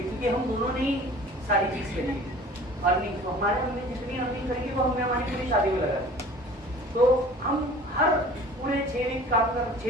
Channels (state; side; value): normal; both; correlation 0.45